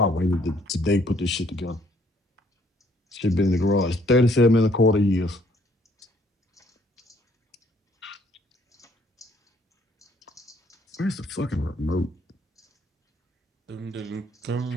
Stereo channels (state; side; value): normal; both; correlation 0.65